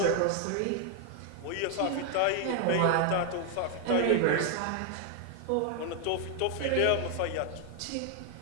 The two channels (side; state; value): both; different; correlation 0.00